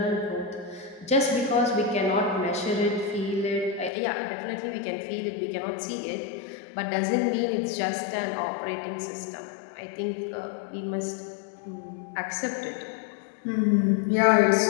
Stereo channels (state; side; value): drops out; right; at 3.9 s